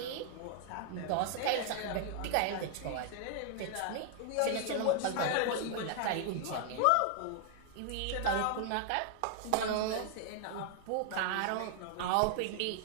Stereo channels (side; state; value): both; different; correlation 0.00